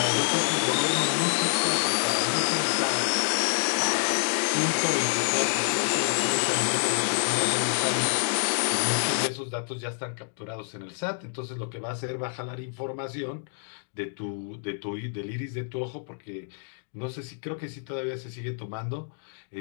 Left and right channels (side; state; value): right; silent; digital silence